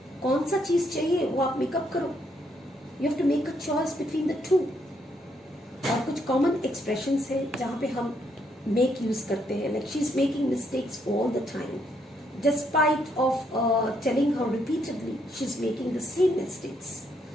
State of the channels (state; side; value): normal; both; correlation 0.73